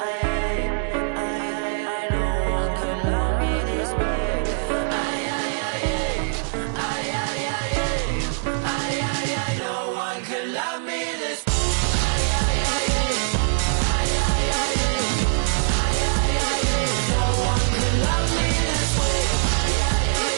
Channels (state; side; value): silent; left; digital silence